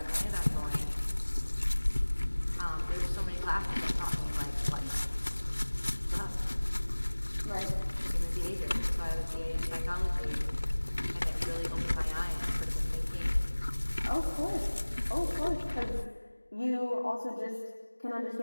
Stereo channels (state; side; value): inverted; both; correlation -1.00